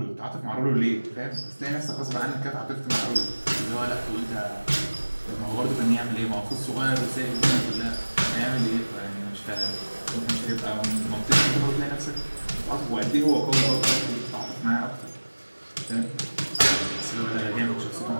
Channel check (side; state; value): both; inverted; correlation -1.00